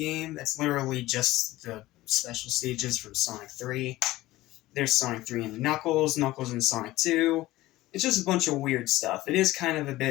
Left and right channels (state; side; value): quieter; right; 17.3 dB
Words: that's literally just the special stages from Sonic 3. There's Sonic 3 and Knuckles, Knuckles and Sonic 2. It's just a bunch of weird stuff. It is kind of a